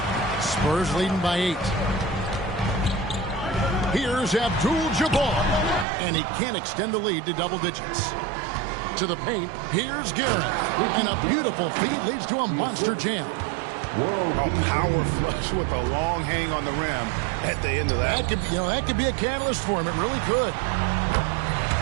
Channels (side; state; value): left; drops out; at 5.9 s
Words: Spurs leading by 8. Here's Abdul-Jabbar, and he can't extend the lead to double digits. To the paint, here's Garrett, and a beautiful feed leads to a monster jam. A power flush with a long hang on the rim at the end of that. That could be a catalyst for him. It really could.